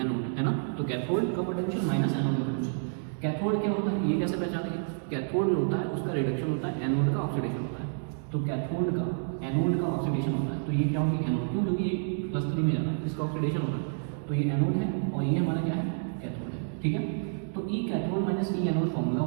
एनोड, है ना। तो कैथोड का पोटेंशियल माइनस एनोड का पोटेंशियल। कैथोड क्या होता है ये कैसे पहचानेंगे, कैथोड जो होता है उसका रिडक्शन होता है, एनोड का ऑक्सीडेशन होता है। तो कैथोड का एनोड का ऑक्सीडेशन होता है, तो ये क्या होगी एनोड, क्यों, क्योंकि ये +3 में जाता है, इसका ऑक्सीडेशन होता है। तो ये एनोड है और ये हमारा क्या है, कैथोड है, ठीक है। तो ई कैथोड माइनस ई एनोड फॉर्मूला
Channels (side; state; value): left; silent; digital silence